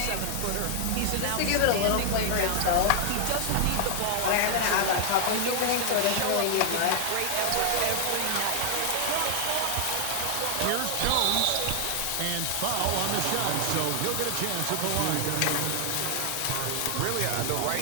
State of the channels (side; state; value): both; different; correlation 0.00